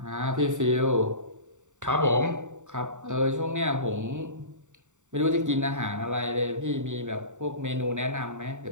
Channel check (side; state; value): left; late; 0.85 ms